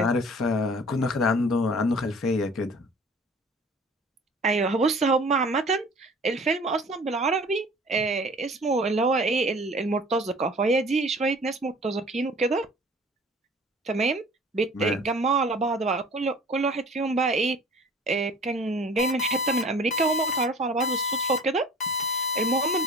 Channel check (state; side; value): normal; both; correlation 0.46